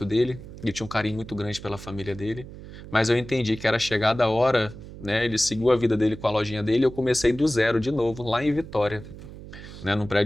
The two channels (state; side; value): noise; right; hum, 14 dB below the sound